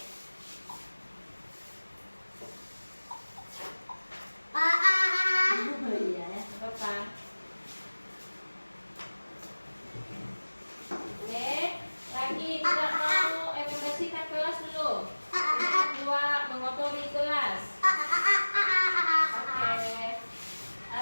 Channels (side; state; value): both; inverted; correlation -1.00